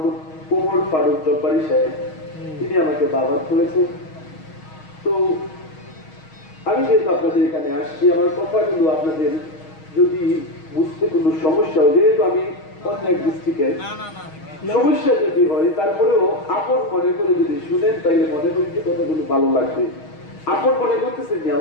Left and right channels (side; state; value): right; late; 6.4 ms